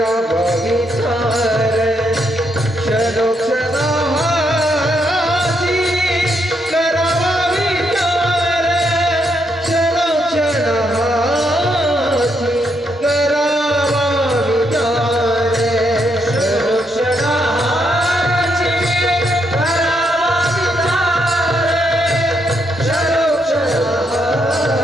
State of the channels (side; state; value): both; normal; correlation 0.77